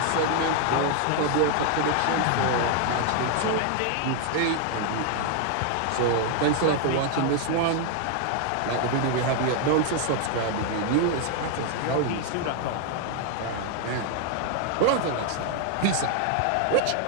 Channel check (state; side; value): different; both; correlation 0.00